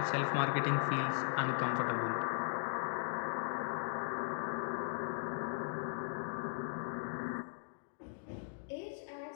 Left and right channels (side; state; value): right; silent; digital silence